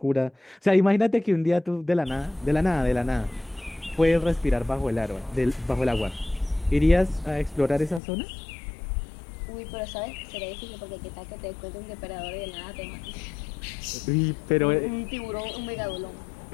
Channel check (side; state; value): right; drops out; at 8.0 s